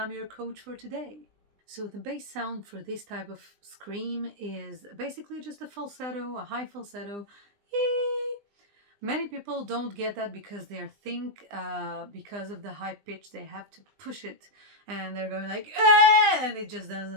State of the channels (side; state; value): left; late; 20 ms